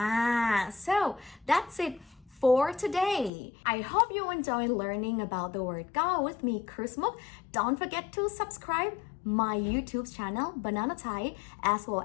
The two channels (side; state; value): right; drops out; at 3.3 s